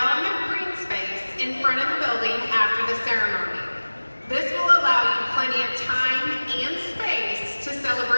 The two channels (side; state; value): both; inverted; correlation -1.00